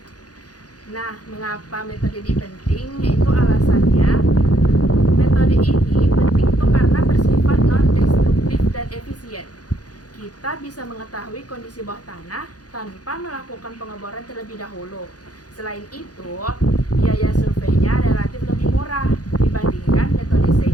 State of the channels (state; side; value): late; right; 0.68 ms